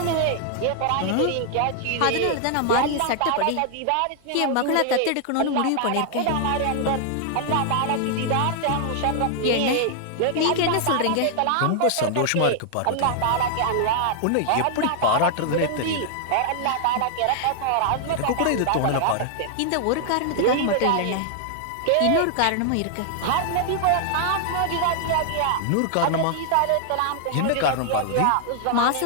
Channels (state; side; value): different; both; correlation 0.00